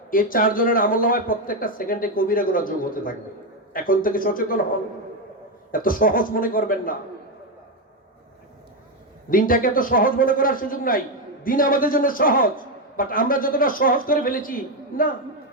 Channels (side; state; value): both; normal; correlation 0.07